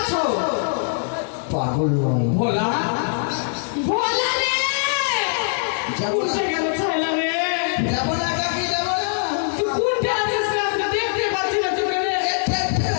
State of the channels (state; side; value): silent; right; 64 dB below the other